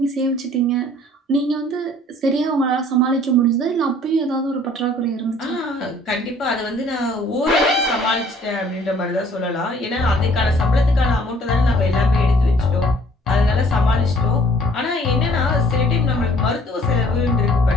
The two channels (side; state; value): both; normal; correlation 0.57